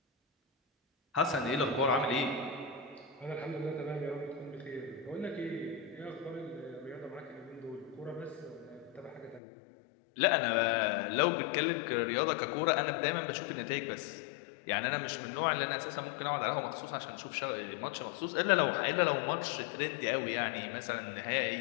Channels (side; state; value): right; drops out; at 9.4 s